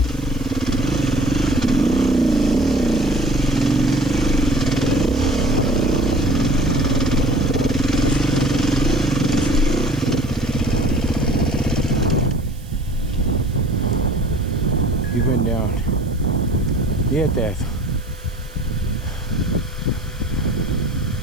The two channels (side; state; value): right; noise; hiss, 25 dB below the sound